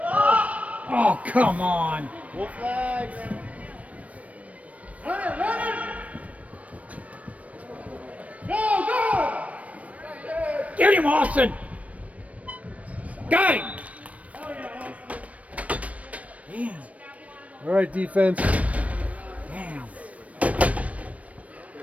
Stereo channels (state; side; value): late; left; 0.066 ms